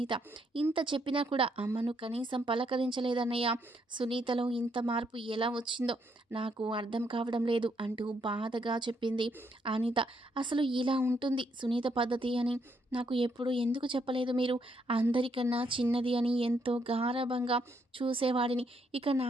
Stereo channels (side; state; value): both; normal; correlation 0.74